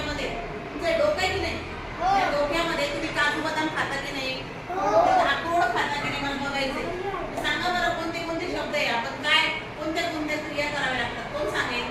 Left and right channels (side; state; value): both; identical; correlation 1.00